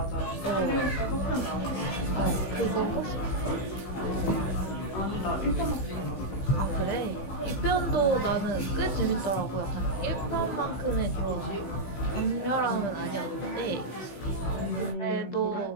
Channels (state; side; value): late; right; 16 ms